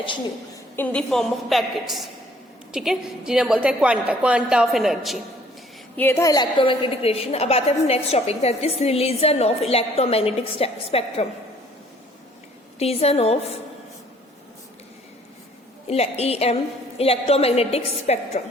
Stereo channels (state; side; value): normal; both; correlation 0.59